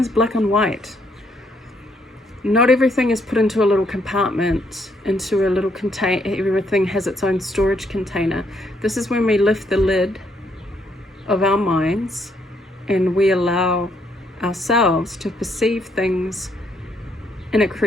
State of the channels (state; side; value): normal; both; correlation 0.72